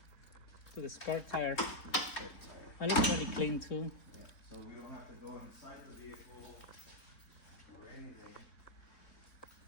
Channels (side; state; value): right; late; 3.9 ms